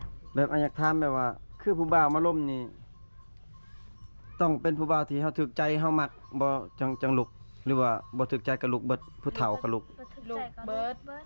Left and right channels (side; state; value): both; inverted; correlation -1.00